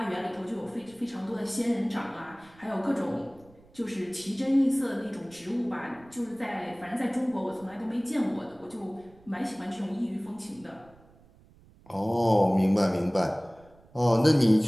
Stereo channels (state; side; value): noise; right; rumble, 27 dB below the sound